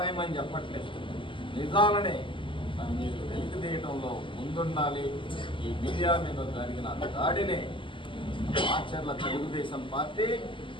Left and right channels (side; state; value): right; late; 0.25 ms